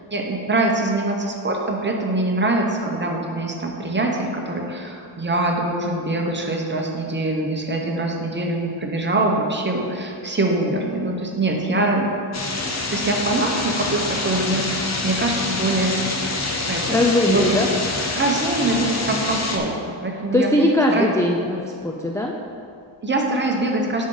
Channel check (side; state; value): both; normal; correlation 0.22